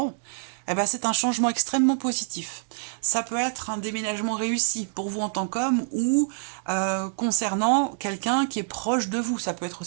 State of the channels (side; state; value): left; silent; digital silence